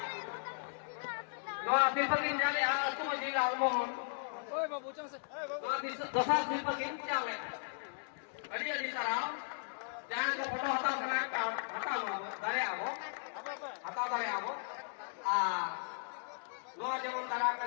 नवासी को किन चले आज तुम जी लाओ नो ओए बाबू चल नवासी दोसा सी को किन चले अड़ी अड़ी सराव जहाँ को फोटो हटाओ समय हटाओ दारे आवो हटाओ दारे आवो Noa jemon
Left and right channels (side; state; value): right; silent; digital silence